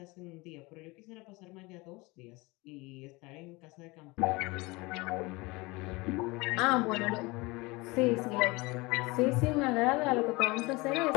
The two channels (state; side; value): quieter; right; 24.1 dB